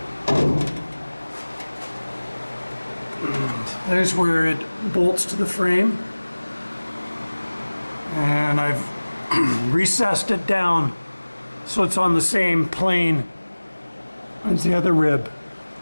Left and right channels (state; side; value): inverted; both; correlation -1.00